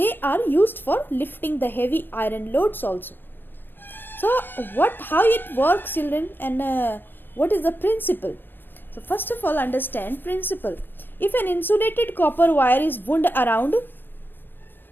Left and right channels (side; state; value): right; late; 0.097 ms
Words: are used for lifting the heavy iron loads also. So how it works, children, and what is the principle? So first of all, understand principle. If an insulated copper wire is wound around